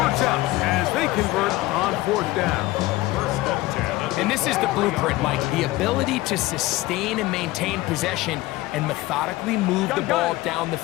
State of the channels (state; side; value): quieter; right; 18.4 dB